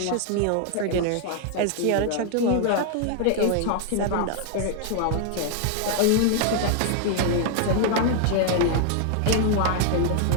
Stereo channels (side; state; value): both; different; correlation 0.00